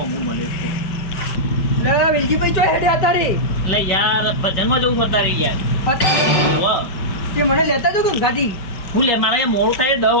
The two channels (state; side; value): late; right; 5.5 ms